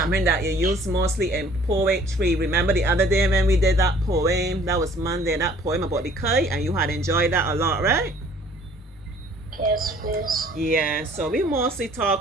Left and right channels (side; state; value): both; normal; correlation 0.55